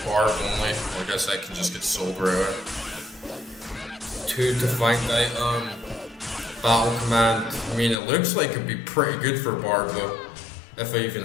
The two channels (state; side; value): drops out; right; at 8.0 s